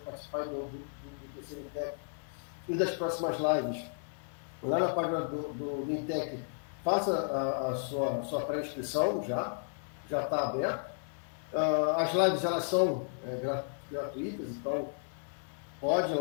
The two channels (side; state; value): right; silent; digital silence